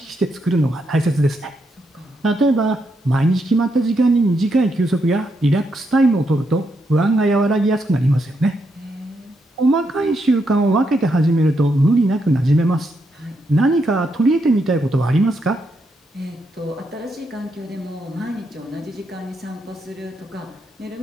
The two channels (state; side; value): normal; both; correlation 0.80